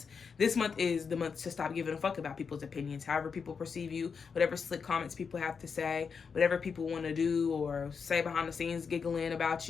this month is the month to stop giving a fuck about people's opinions. However people perceive you, whatever slick comments people have to say, whatever people want to do or say behind the scenes giggling about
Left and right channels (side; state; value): right; quieter; 5.8 dB